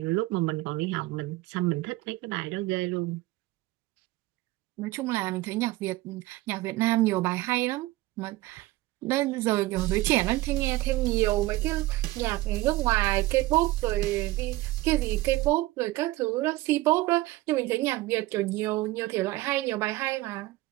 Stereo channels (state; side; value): quieter; left; 18.6 dB